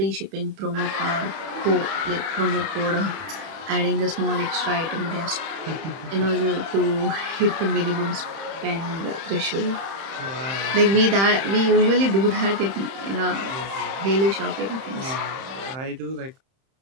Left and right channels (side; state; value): left; late; 31 ms